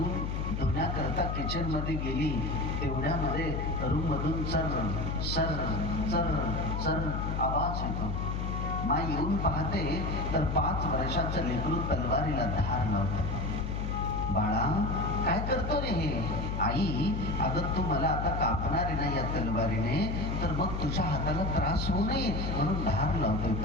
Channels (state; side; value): noise; left; hum, 2 dB below the sound